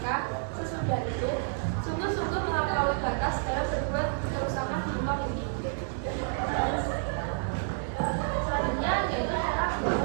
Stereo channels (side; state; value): left; silent; digital silence